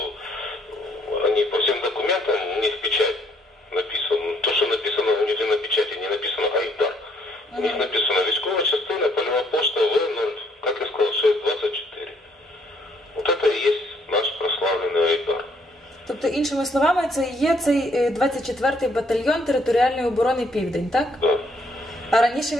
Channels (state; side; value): normal; both; correlation 0.67